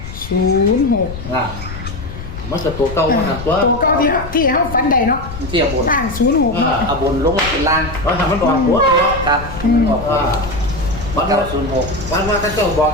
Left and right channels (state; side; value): noise; left; rumble, 10 dB below the sound